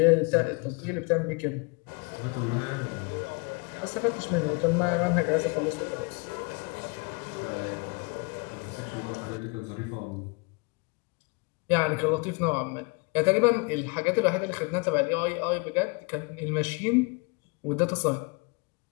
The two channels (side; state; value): right; quieter; 30.9 dB